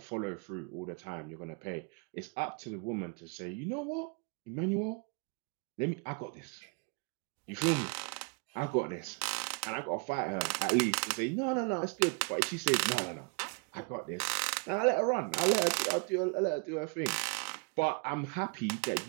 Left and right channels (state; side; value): quieter; left; 35.4 dB